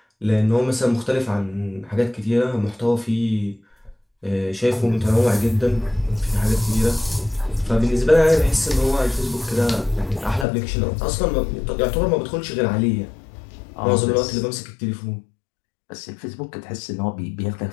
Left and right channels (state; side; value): drops out; right; at 10.5 s